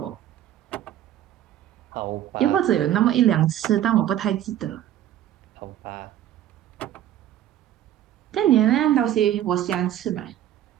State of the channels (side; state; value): left; quieter; 11.9 dB